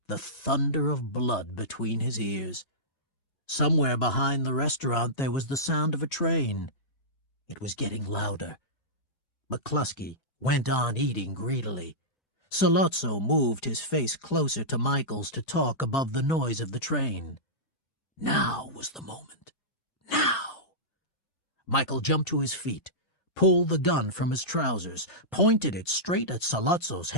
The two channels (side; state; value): right; late; 4.9 ms